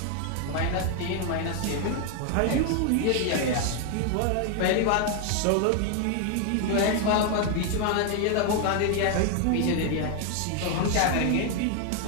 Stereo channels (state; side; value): different; both; correlation 0.00